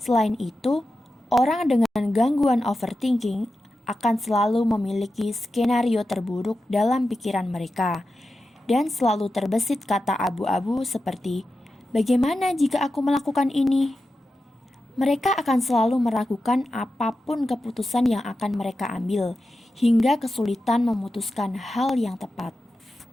itu, orang dengan gangguan overthinking akan selalu memiliki skenario terburuk dalam pikiran mereka dan selalu terbesit kata abu-abu seperti, "Bagaimana jika aku melakukan ini?" Mereka akan selalu meragukan apapun keputusan yang akan mereka ambil, hingga kesulitan memutuskan hal yang tepat.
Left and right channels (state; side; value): normal; both; correlation 0.91